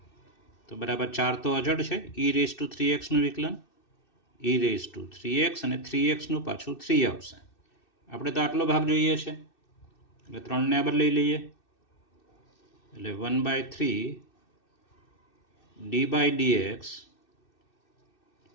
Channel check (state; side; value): late; right; 2.6 ms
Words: તો બરાબર 4 તો અચળ છે. e⁻3x નું વિકલન e⁻3x અને 3x નું પાછું 3 આવશે. આપણે તો આટલો ભાગ જોઈએ છે એટલે 3 ને આગળ લઈ લઈએ. એટલે 1/3 d/dx